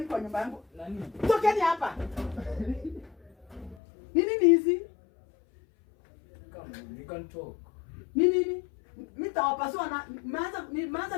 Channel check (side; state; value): right; drops out; at 3.8 s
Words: kwa nyumba yangu? Nani? Tokeni hapa. Nini hizi? Come, we can talk. Nini? Mtawapasua na maana